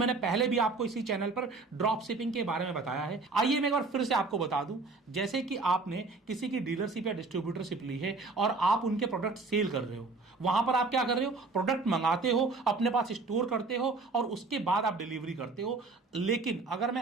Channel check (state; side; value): quieter; left; 3.8 dB